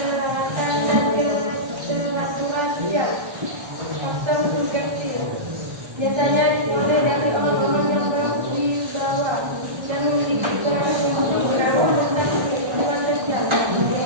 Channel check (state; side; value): late; left; 1.3 ms